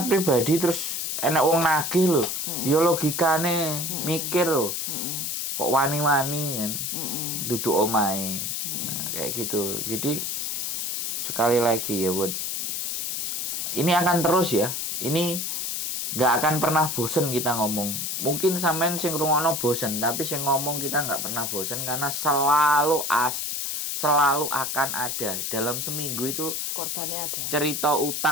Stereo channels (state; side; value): noise; left; hiss, 2 dB below the sound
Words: pribadi terus enak wong nagih lho. Ya logikane mikir lho. Kok wani-wani kan. Duduk omahe. Nah, kayak gitu. Jadi sekali lagi ya buat ini akan terus ya. Ini nggak akan pernah bosen kita ngomong. Mungkin sampean sing ngrungokno bosen, tapi sing ngomong kita nggak pernah bosen karena selalu akan ada dalam seminggu itu Korbannya ada. cerita